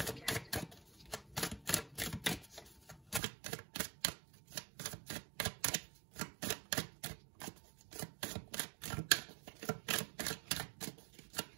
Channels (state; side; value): drops out; left; at 3.2 s